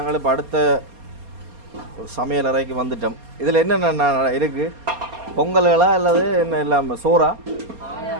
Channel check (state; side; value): late; left; 4.3 ms